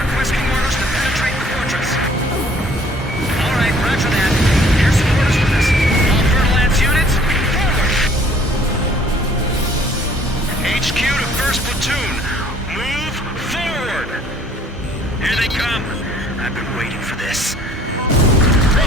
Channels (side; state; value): both; normal; correlation 0.57